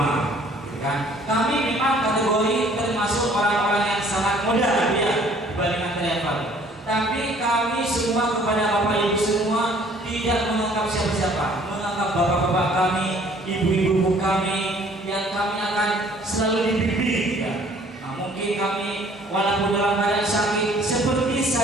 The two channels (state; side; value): normal; both; correlation 0.57